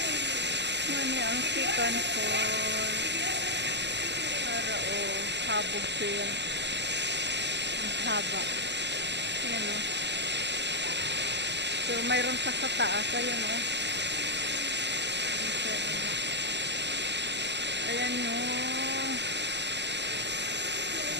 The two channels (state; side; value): late; left; 0.50 ms